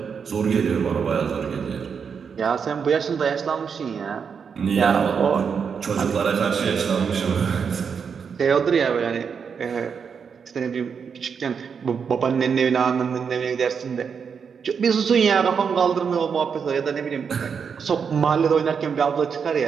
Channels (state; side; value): quieter; left; 6.4 dB